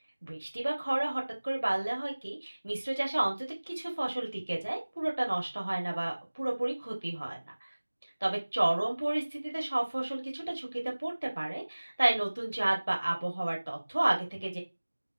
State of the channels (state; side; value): inverted; both; correlation -1.00